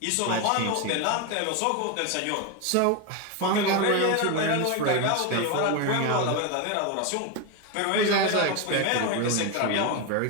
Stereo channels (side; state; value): both; different; correlation 0.02